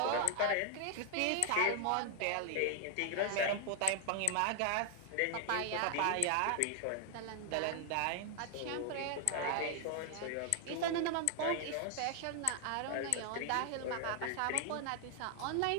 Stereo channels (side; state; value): both; different; correlation 0.00